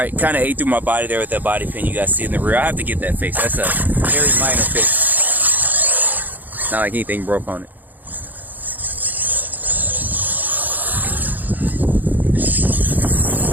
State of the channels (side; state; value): left; late; 0.084 ms